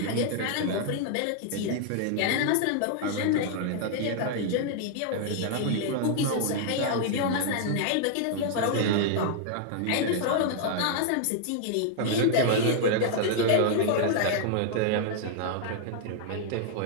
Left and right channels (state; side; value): different; both; correlation -0.01